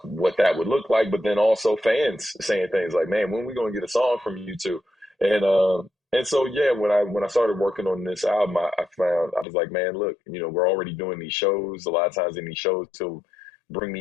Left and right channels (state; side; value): drops out; right; at 9.5 s